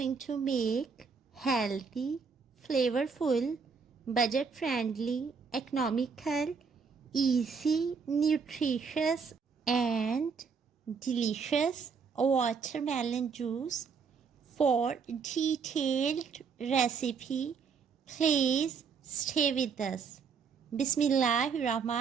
to make healthy, flavorful, budget-friendly, economical, easy, nutritious and delicious watermelon juice. For detailed recipe, please stay with us.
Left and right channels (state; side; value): quieter; left; 5.7 dB